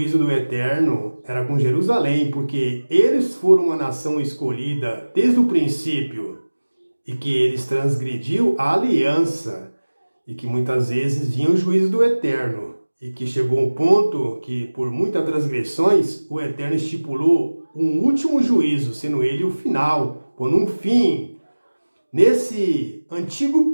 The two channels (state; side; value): inverted; both; correlation -1.00